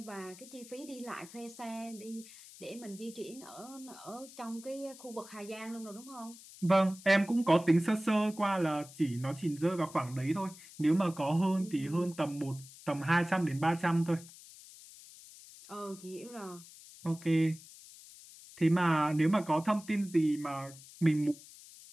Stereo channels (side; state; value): left; noise; hiss, 19 dB below the sound